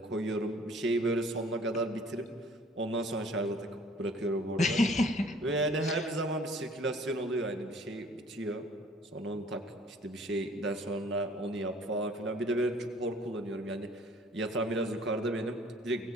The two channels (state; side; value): normal; both; correlation 0.54